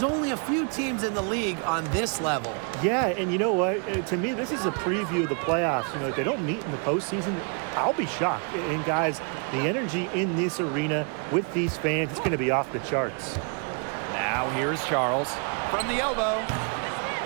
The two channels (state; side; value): quieter; left; 39.1 dB